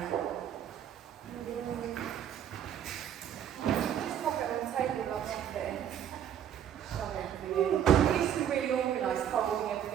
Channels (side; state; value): left; quieter; 9.6 dB